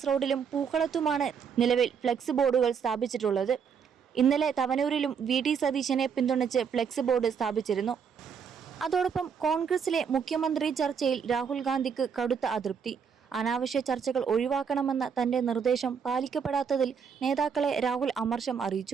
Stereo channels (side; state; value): left; quieter; 6.8 dB